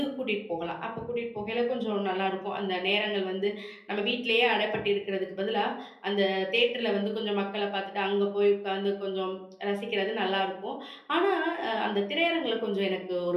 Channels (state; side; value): identical; both; correlation 1.00